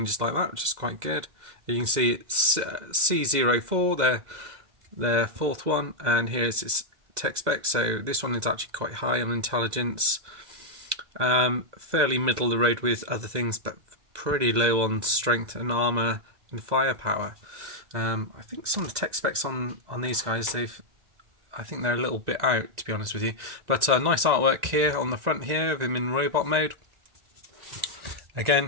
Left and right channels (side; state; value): left; late; 2.0 ms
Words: like that, which is quite good. You can see it's C04, their fourth one, and here's its tech spec. So this one is actually quite high on intelligence, fairly middle of the road with other things, but pretty low on strength and armor and firepower. I think some of the tech specs on these guys, I think they're a little bit out, to be honest with you. But nice artwork here on the front here of him in robot mode.